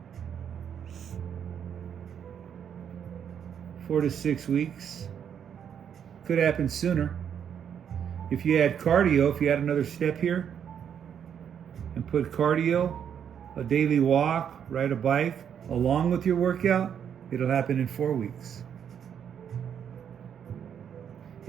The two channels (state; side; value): quieter; left; 8.4 dB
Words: 4 to 6 weeks. Could happen sooner. If you add cardio, if you add another step here and put cardio, a daily walk, ride a bike, along with your workout, it'll happen in 4 weeks.